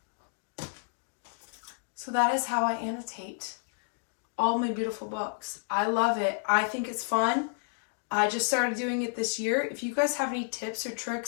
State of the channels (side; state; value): right; silent; digital silence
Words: So that is how I annotate all my beautiful books. I love it. I think it's fun. I just started doing it this year. If you guys have any tips or